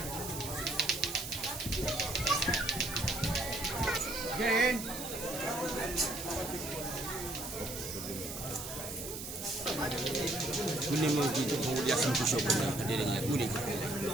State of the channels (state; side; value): noise; right; hiss, 8 dB below the sound